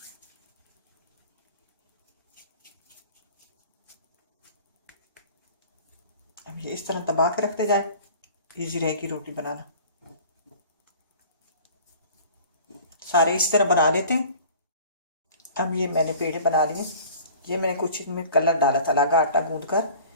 अब ये इस तरह दबा के रखते जाए, इजी रहेगी रोटी बनाना। सारे इस तरह बना लेते हैं। अब ये मैंने पेड़े बना लिए। ये मैंने कुछ इसमें कलर डाला था, लगा आटा गूंद कर,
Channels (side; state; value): both; inverted; correlation -0.45